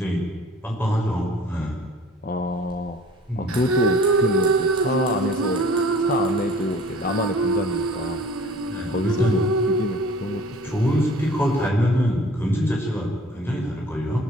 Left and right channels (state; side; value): normal; both; correlation 0.48